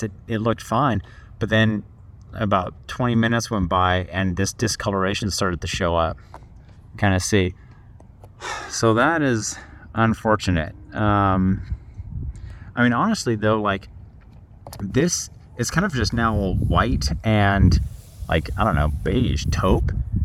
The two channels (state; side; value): identical; both; correlation 1.00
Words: it looked fine, but then about 20 minutes went by and this discoloration started to show up. Kind of see. So that is unfortunate. I mean, honestly though, like this is kind of just now white and like, I don't know, beige taupe.